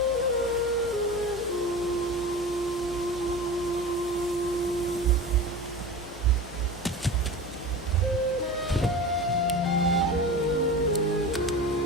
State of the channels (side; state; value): both; normal; correlation 0.31